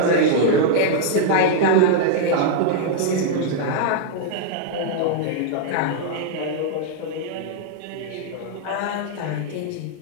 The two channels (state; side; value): different; both; correlation -0.01